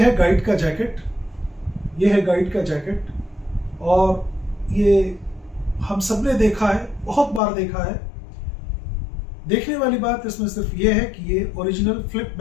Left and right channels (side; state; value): right; drops out; at 7.4 s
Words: है गाइड का जैकेट, ये है गाइड का जैकेट, और ये हम सब ने देखा है, बहुत बार देखा है। देखने वाली बात इसमें सिर्फ ये है कि ये ओरिजिनल फ्लिप